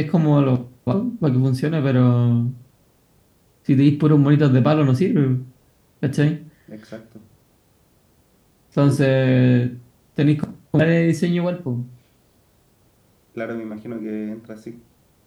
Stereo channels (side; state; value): both; identical; correlation 1.00